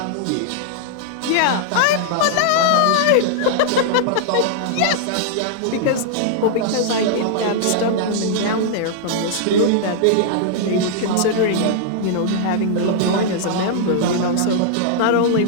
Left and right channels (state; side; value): different; both; correlation -0.01